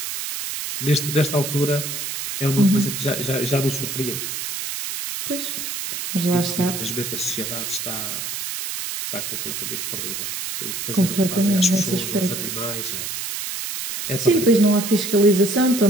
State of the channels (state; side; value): noise; right; hiss, 5 dB below the sound